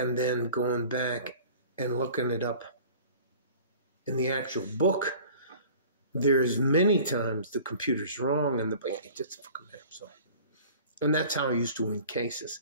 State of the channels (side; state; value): both; inverted; correlation -0.45